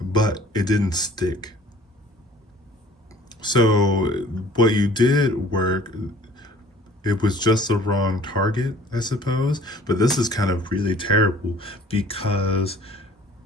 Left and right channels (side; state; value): both; normal; correlation 0.51